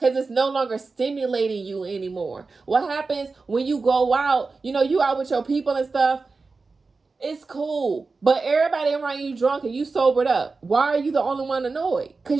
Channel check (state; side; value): quieter; left; 4.1 dB